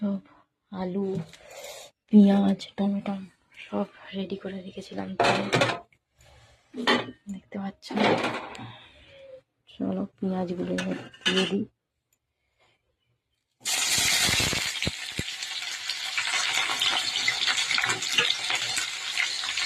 আলু, পেঁয়াজ, টমেটো সব রেডি করে রেখেছিলাম। দেখতে পাচ্ছ, চলো পেঁয়াজগুলো দিয়ে দিই।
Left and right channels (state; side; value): identical; both; correlation 1.00